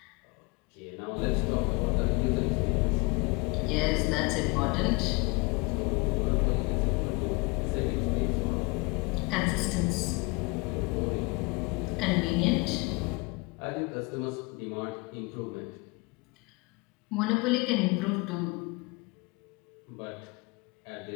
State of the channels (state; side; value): quieter; right; 27.7 dB